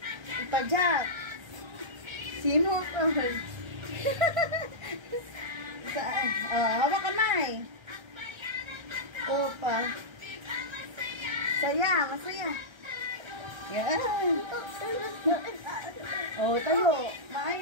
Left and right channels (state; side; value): late; left; 1.3 ms